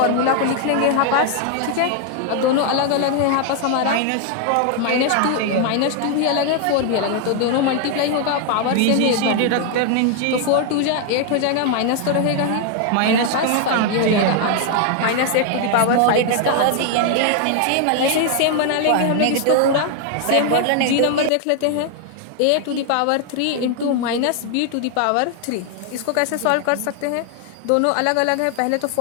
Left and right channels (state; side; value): different; both; correlation 0.00